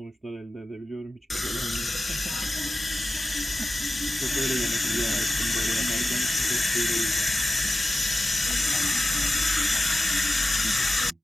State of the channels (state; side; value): normal; both; correlation 0.95